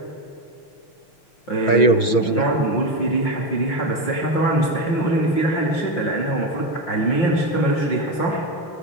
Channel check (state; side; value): late; right; 6.2 ms